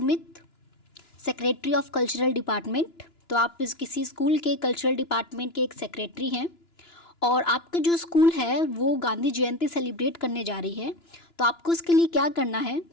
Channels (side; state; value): right; late; 2.9 ms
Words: secretary of cultural department. तो आप किसी स्कूल के कल्चरल डिपार्टमेंट के एक सेक्रेटरी हैं और आपका जो स्कूल है वो गांधी जयंती सेलिब्रेट करने जा रही है। तो आपको उसके लिए क्या करना है,